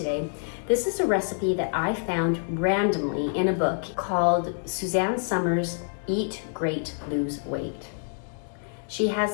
This is a recipe that I found randomly in a book called Suzanne Somers' Eat Great, Lose Weight. She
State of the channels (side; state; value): right; silent; digital silence